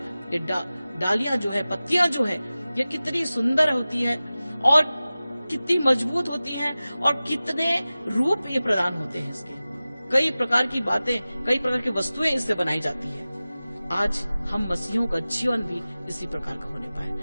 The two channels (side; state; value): both; inverted; correlation -0.97